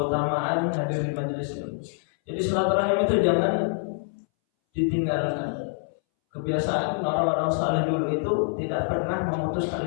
hadir di majelis ilmu. Jadi silaturahim itu jangan ditinggalkan. Kebiasaan orang-orang saleh dulu itu tidak pernah memutus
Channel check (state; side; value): silent; right; 61 dB below the other